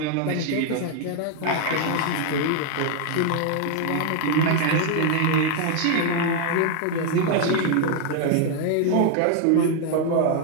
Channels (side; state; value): both; different; correlation 0.00